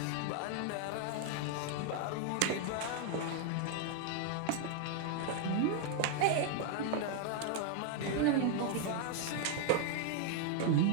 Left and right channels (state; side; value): different; both; correlation 0.00